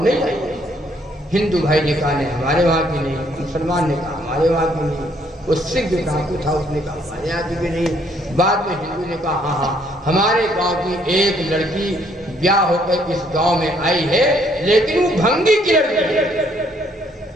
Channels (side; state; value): both; normal; correlation 0.67